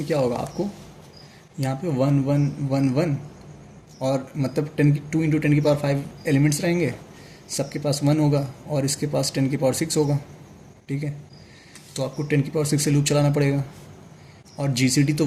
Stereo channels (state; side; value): identical; both; correlation 1.00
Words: क्या होगा आपको, यहाँ पे 1 1 1 1 और मतलब 10 की 2 इंटू 10 की पावर 5 एलिमेंट्स रहेंगे, सबके पास 1 होगा और इसके पास 10 की पावर 6 होगा, ठीक है। तो आपको 10 की पावर 6 से लूप चलाना पड़ेगा और जीसीडी तो